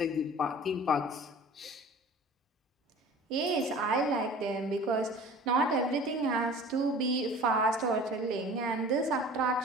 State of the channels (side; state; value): both; normal; correlation 0.43